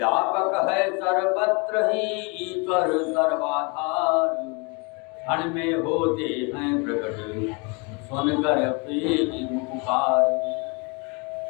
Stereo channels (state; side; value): quieter; right; 30.1 dB